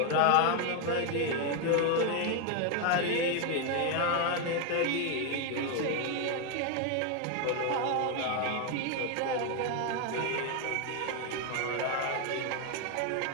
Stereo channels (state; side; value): different; both; correlation 0.01